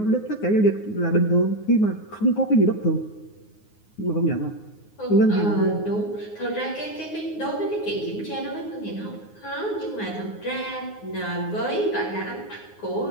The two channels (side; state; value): right; late; 9.5 ms